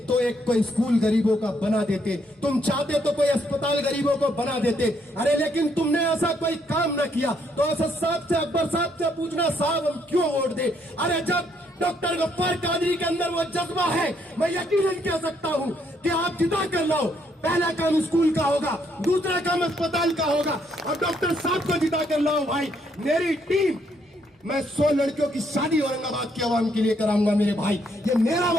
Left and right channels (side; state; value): both; normal; correlation 0.72